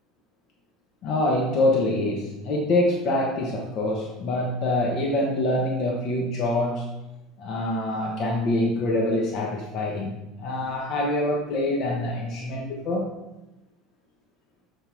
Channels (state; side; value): normal; both; correlation 0.35